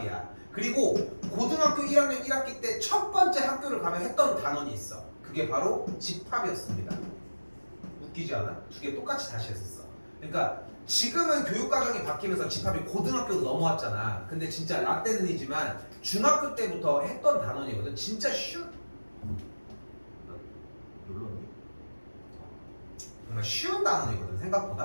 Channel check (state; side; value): inverted; both; correlation -1.00